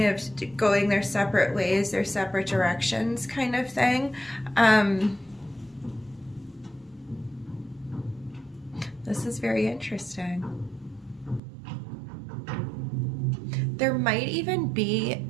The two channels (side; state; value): left; drops out; at 11.4 s